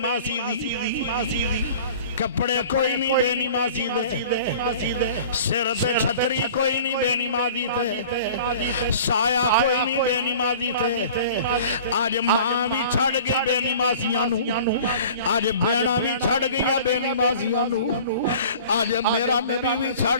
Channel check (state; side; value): inverted; both; correlation -0.44